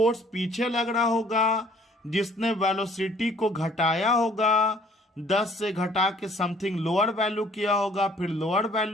पीछे लग रहा होगा जिसने वेलोसिटी को घटाया होगा, 10 से घटा के समथिंग लोअर वैल्यू किया होगा, फिर लोअर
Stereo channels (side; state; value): both; normal; correlation 0.58